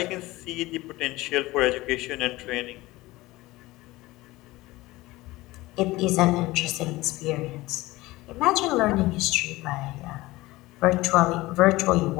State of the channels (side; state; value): right; quieter; 19.4 dB